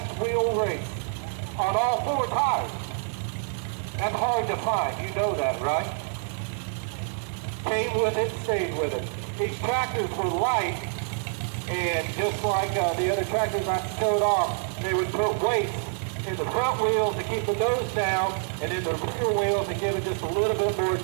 wheel race on all 4 tires. That's hard to find, you know that, right? Came with it, stayed with it. These tractors were light, and just like the other tractors I showed off, they would put weights in the front wheels to keep the nose down, and in the rear wheels to give it just a little bit more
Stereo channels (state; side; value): silent; left; 59 dB below the other